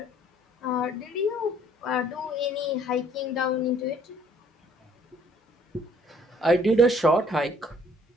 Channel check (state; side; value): normal; both; correlation 0.61